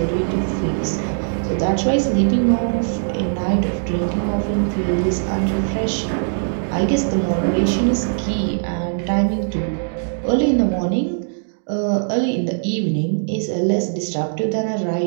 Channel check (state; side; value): silent; left; digital silence